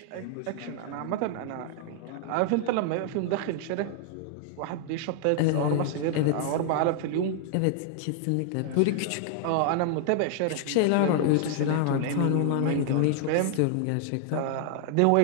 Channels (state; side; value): different; both; correlation 0.00